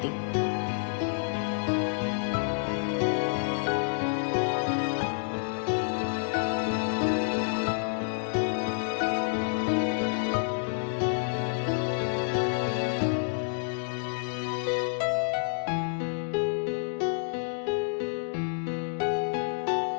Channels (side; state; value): right; silent; digital silence